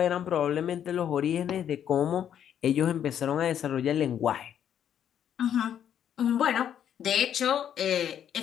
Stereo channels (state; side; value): quieter; right; 9.5 dB